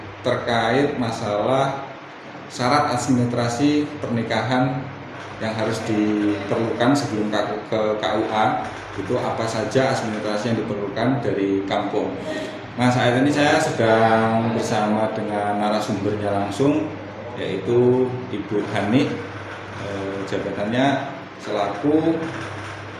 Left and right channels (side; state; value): both; identical; correlation 1.00